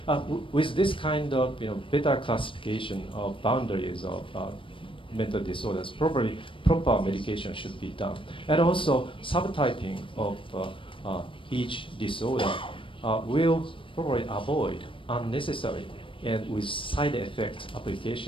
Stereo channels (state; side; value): late; right; 0.25 ms